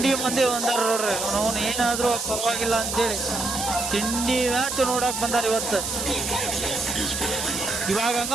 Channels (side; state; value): right; noise; hiss, 4 dB below the sound